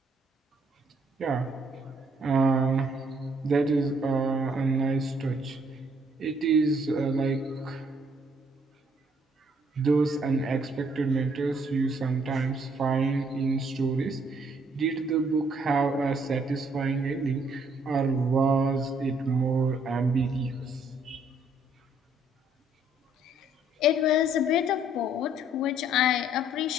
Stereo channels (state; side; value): normal; both; correlation 0.66